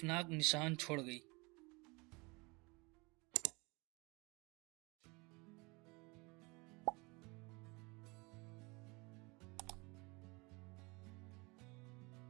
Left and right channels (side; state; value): left; quieter; 26.6 dB